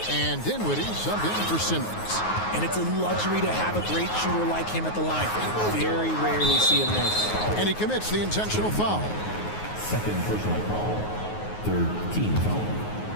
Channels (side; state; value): right; late; 9.5 ms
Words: and Dinwiddie subbed in for Simmons. And it's a luxury to have a great shooter like him at the line. Very rarely see him miss. And he commits the intentional foul. Second personal foul. Third team foul.